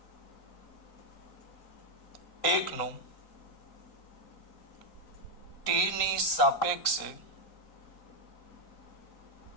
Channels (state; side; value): late; right; 3.9 ms